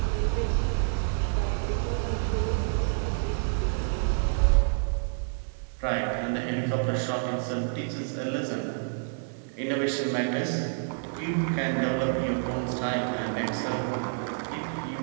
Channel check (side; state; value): left; silent; digital silence